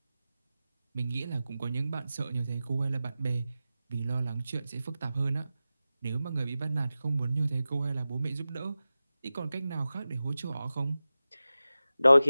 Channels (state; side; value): inverted; both; correlation -0.95